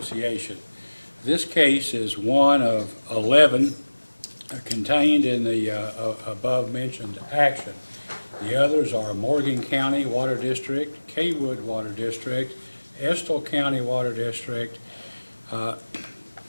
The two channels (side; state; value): both; inverted; correlation -1.00